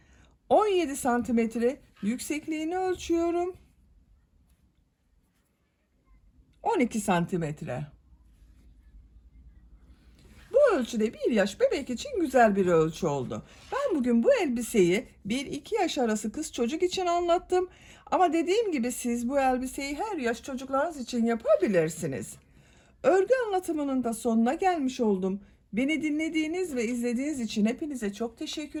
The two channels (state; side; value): identical; both; correlation 1.00